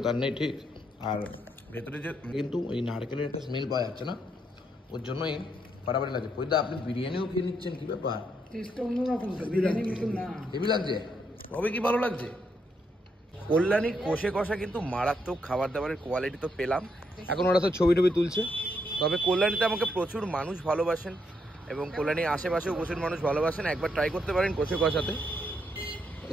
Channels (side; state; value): both; normal; correlation 0.77